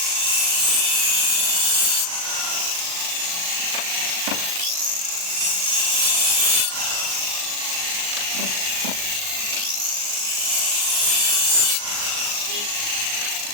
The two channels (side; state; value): left; late; 38 ms